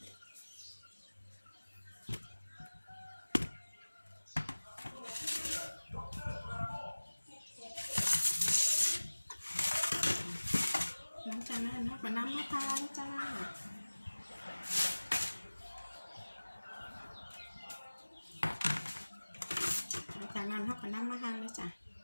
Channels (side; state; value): both; inverted; correlation -1.00